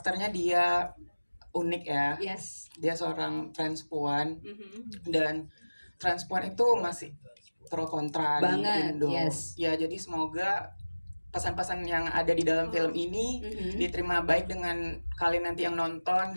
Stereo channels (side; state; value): both; inverted; correlation -1.00